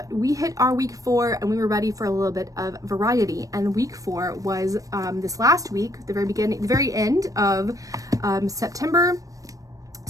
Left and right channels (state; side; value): late; left; 0.16 ms